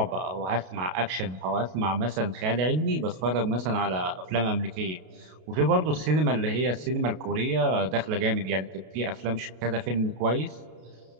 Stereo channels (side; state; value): left; late; 32 ms